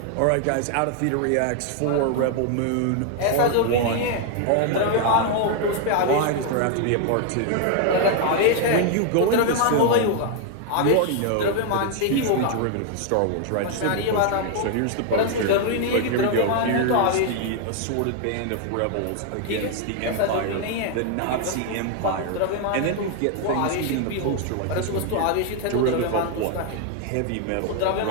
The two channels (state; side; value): different; both; correlation 0.00